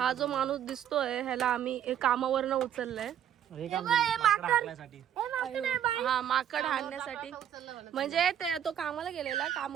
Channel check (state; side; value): quieter; left; 10.2 dB